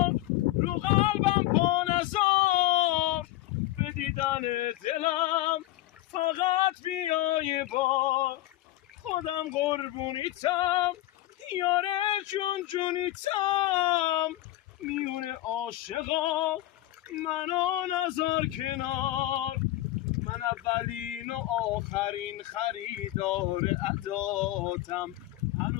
رو قلبم پا نذار، به دیدن دلم فقط بیای بار. خودم قربونیتم یاره جون جونیتم، میون عاشقا منو نذار کنار. من اولین و آخرین خریدار عداتم،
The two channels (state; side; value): quieter; right; 15.7 dB